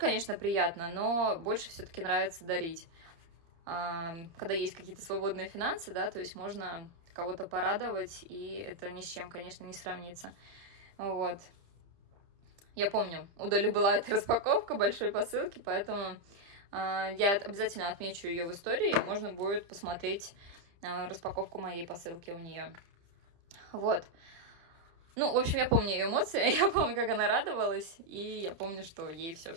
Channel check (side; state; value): left; late; 30 ms